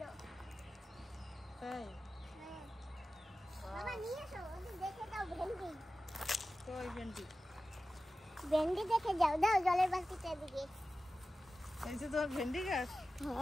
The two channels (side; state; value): both; normal; correlation 0.94